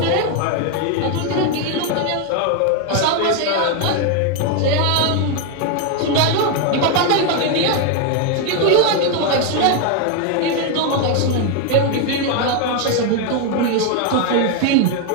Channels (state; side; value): different; both; correlation 0.01